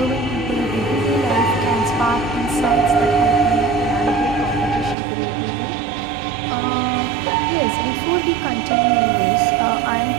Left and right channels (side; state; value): left; drops out; at 5.0 s